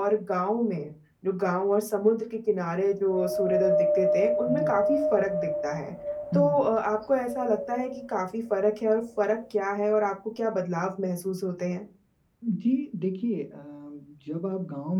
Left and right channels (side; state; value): both; identical; correlation 1.00